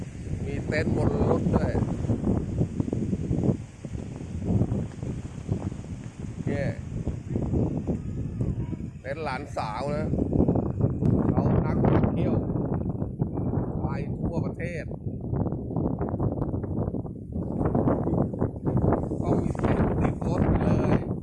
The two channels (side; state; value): both; identical; correlation 1.00